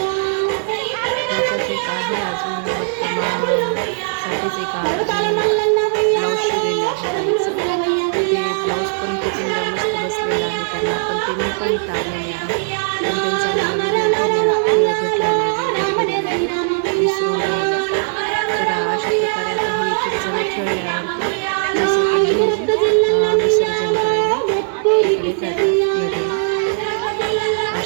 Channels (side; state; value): left; silent; 67 dB below the other